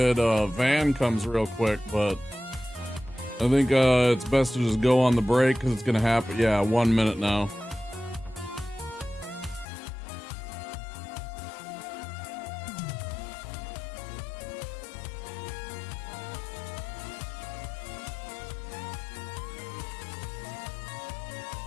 van comes real quick, but I think it's best to just go on the break because it's gonna happen. Yeah, 1 minute now.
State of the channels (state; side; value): drops out; right; at 9.7 s